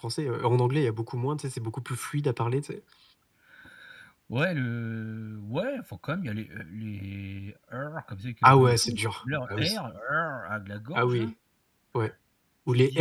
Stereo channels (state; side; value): identical; both; correlation 1.00